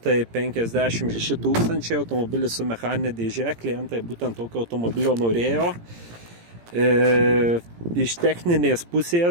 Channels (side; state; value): left; late; 17 ms